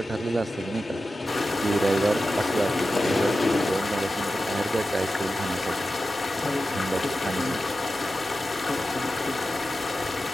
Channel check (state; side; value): normal; both; correlation 0.92